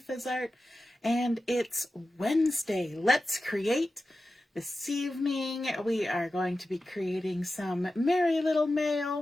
is Art, and it's Wednesday. Let's create. This evening, we are going to be creating some merry little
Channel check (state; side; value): normal; both; correlation 0.93